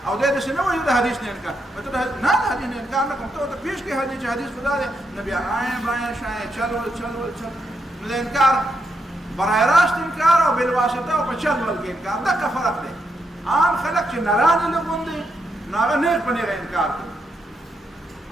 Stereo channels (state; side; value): normal; both; correlation 0.81